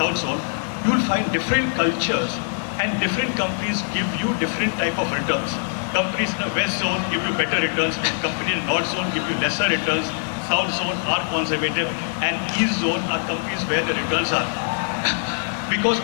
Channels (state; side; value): silent; right; digital silence